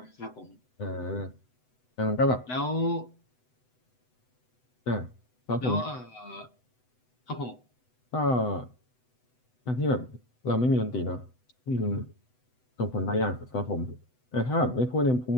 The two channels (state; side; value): late; right; 8.0 ms